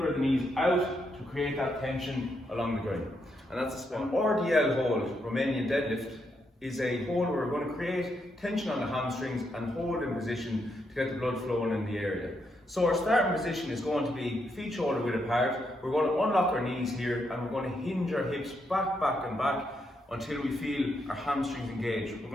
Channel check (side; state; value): both; normal; correlation 0.79